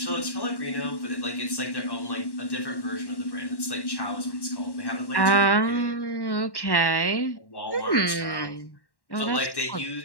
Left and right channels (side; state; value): right; late; 1.1 ms